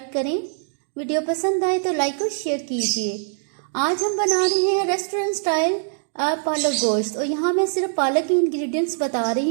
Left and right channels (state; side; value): silent; left; 64 dB below the other